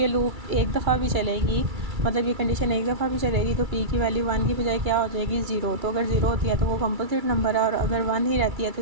लूप एक दफ़ा भी चलेगी, मतलब ये कंडीशन एक दफ़ा भी चलेगी, तो पी की वैल्यू 1 की बजाय क्या हो जाएगी, 0। तो अगर 0 होती है तो वो कंपोजिट नंबर है, और अगर 1 ही रहती है तो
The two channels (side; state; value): left; late; 2.3 ms